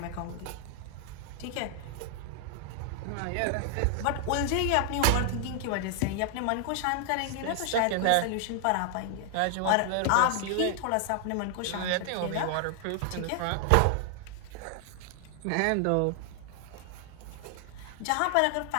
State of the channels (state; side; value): different; both; correlation 0.00